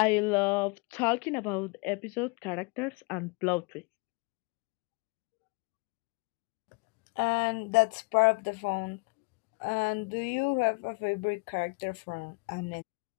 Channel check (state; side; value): quieter; right; 29.6 dB